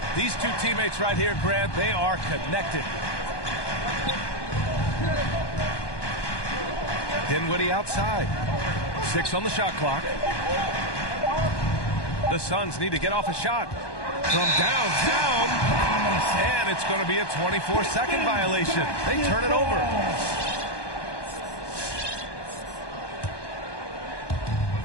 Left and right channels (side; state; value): right; late; 1.2 ms